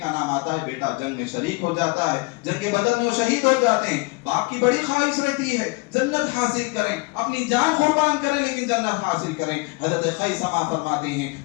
نام آتا ہے, بیٹا جنگ میں شریک ہو جاتا ہے, جنگ بدر میں وہ شہید ہو جاتے ہیں. باپ کی بڑی خواہش رہتی ہے جنت حاصل کریں, اپنی جان قربان کریں لیکن جنت حاصل کریں. حضرت خیثمہ فرماتے ہیں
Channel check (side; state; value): right; quieter; 27.1 dB